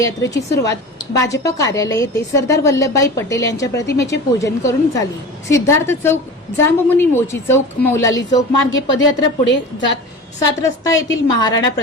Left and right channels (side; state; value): both; normal; correlation 0.34